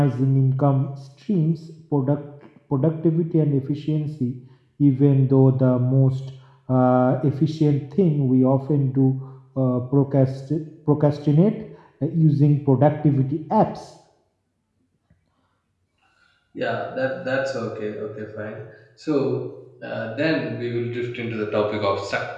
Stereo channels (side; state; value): both; identical; correlation 1.00